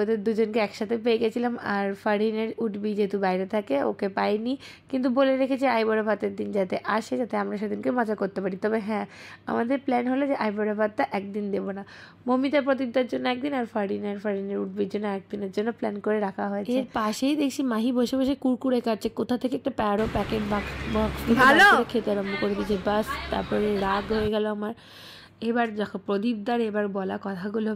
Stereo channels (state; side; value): identical; both; correlation 1.00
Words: ওদের দুজনকে একসাথে পেয়ে গেছিলাম। আর ফারিনের উঠবি যেহেতু বাইরে থাকে, ওকে পাইনি, কিন্তু বলে রেখেছি আইবুড়ো ভাতের দিন যাতে আসে, যাতে আমরা সেদিনকে মজা করতে পারি। তবে হ্যাঁ, আমাদের প্ল্যান হলো যে আইবুড়ো ভাতটা একদিন দেবো না, মমিতা প্রদীপদার জন্য একদিন, আর ফারিনের উঠবির জন্য একদিনের জন্য প্ল্যান করে রাখা হয়েছে। এর পাশেই দেখছি মাহি বসে বসে কুরকুরে খাচ্ছে, কোথা থেকে একটা প্যারো প্যাকেট বক্স খেতে আরম্ভ করে দিয়েছে। বাস, তারপরে রাগ হয়ে গেল আমার। এবার দেখো প্রদীপদার এবার বলা কথাগুলো